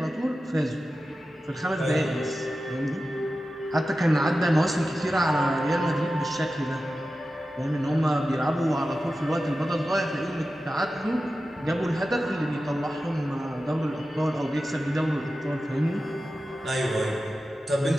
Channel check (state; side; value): normal; both; correlation 0.93